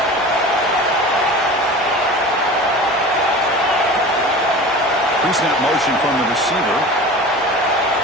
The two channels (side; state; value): both; normal; correlation 0.36